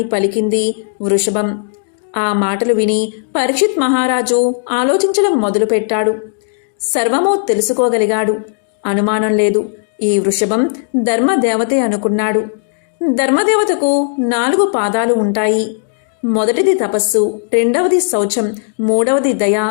పలికింది వృషభం. ఆ మాటలు విని పరీక్షిత్ మహారాజు ఆలోచించడం మొదలుపెట్టాడు. సర్వమూ తెలుసుకోగలిగాడు. అనుమానం లేదు, ఈ వృషభం ధర్మదేవతే అనుకున్నాడు. ధర్మదేవతకు 4 పాదాలు ఉంటాయి. మొదటిది తపస్సు, రెండవది శౌచం, మూడవది దయ,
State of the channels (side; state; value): right; silent; digital silence